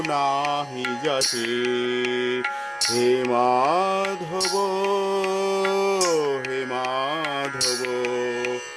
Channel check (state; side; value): identical; both; correlation 1.00